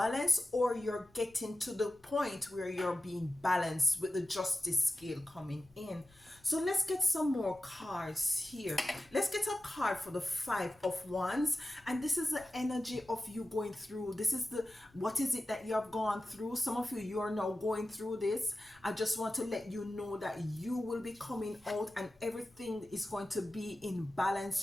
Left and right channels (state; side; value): noise; left; rumble, 29 dB below the sound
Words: or you're getting to the point where you're being balanced with the justice scale coming in. So let's get some more cards here. Let's get a card for the 5 of Wands. And this is the energy of you going through. This is the, what is it that you have gone through? Some of you are now going through this. I just want to let you know that you will be coming out and everything is going to be in balance